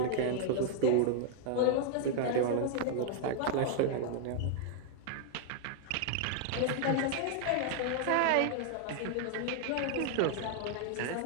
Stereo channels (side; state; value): both; different; correlation 0.00